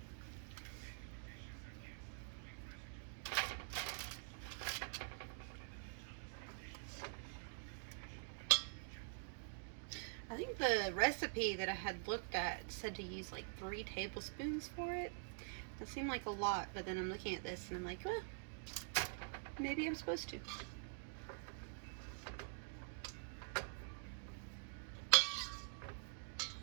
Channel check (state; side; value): silent; left; digital silence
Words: I think the recipe that I had looked at said to use like 3 tablespoons for it. That seemed like a lot, but then I'm looking at this and I'm like, well, maybe I'm supposed to.